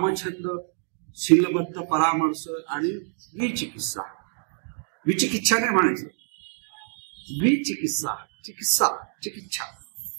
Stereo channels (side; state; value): left; silent; digital silence